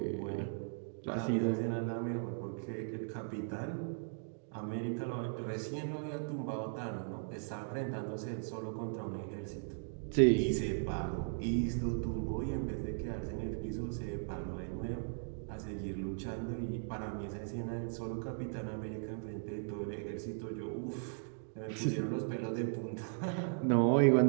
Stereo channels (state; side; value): silent; left; digital silence